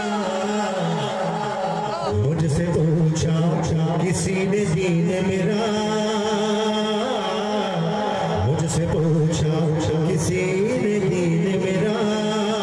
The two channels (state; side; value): identical; both; correlation 1.00